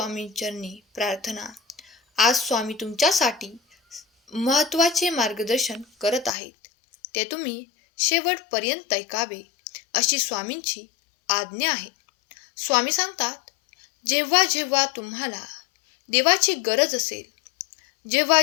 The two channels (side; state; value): right; drops out; at 6.4 s